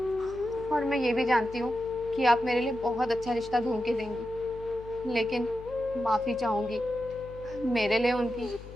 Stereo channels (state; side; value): noise; left; hum, 16 dB below the sound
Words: और मैं ये भी जानती हूँ कि आप मेरे लिए बहुत अच्छा रिश्ता ढूंढ के देंगी, लेकिन माफ़ी चाहूँगी, मेरे लिए उनकी